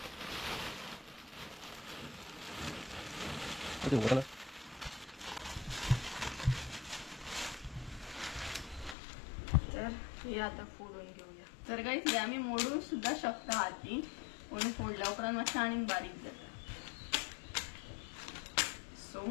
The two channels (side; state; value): right; drops out; at 9.0 s